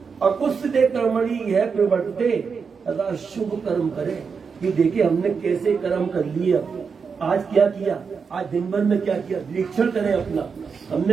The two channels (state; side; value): quieter; left; 5.7 dB